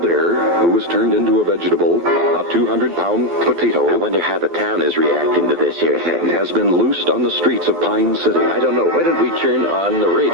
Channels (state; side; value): late; left; 12 ms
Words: who was turned into a vegetable, a 200-pound potato, I wonder how the town is reacting to this here thing. has been loosed on the streets of Pine City. I don't know. Why don't we turn on the